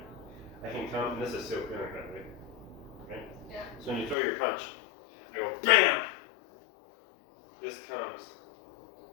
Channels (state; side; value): drops out; right; at 4.2 s